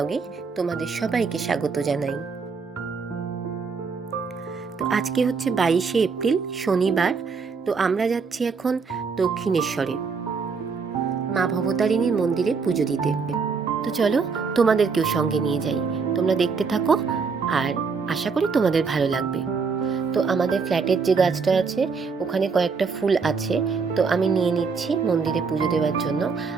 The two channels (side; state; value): left; quieter; 5.1 dB